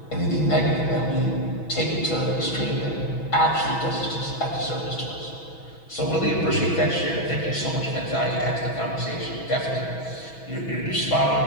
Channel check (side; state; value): right; late; 6.1 ms